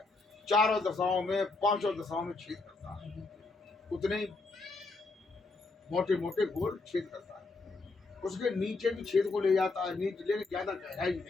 चारों दशाओं में, 5 दशाओं में छेद करता है। उतने ही मोटे मोटे गोल छेद करता है। उसके नीचे भी छेद को ले जाता है, नीचे लेकिन ज्यादा गहराई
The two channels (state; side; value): quieter; right; 3.6 dB